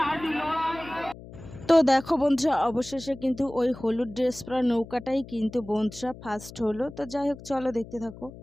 তো দেখো বন্ধুরা, অবশেষে কিন্তু ওই হলুদ ড্রেস পরা নৌকাটাই কিন্তু বন্ধুরা ফার্স্ট হলো। তো যাই হোক, চলো দেখতে থাকো।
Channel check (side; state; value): left; noise; hum, 16 dB below the sound